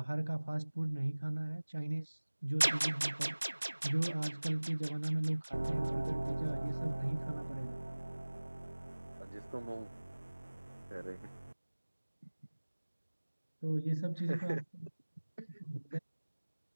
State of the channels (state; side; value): inverted; both; correlation -1.00